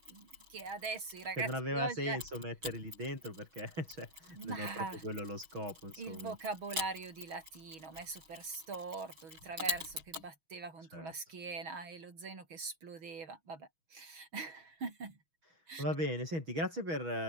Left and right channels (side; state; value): left; late; 6.3 ms